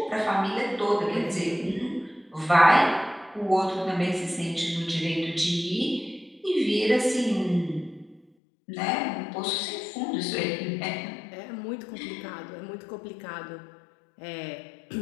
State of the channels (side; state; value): right; drops out; at 8.2 s